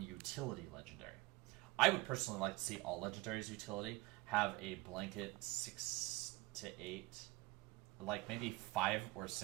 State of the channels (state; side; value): quieter; left; 20.8 dB